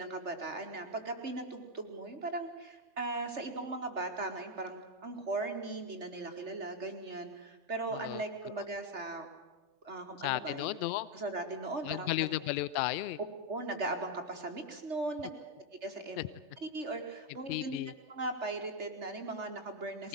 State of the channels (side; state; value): left; late; 3.3 ms